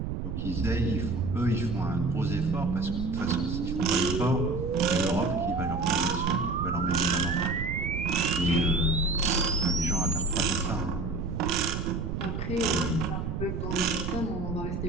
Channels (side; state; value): right; noise; rumble, 3 dB below the sound